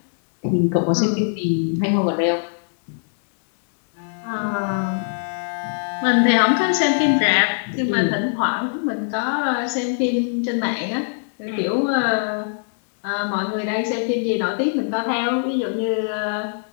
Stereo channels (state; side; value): silent; right; digital silence